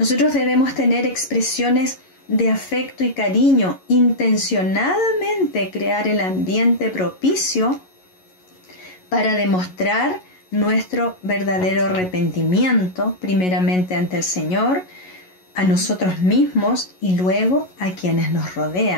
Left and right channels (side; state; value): right; late; 11 ms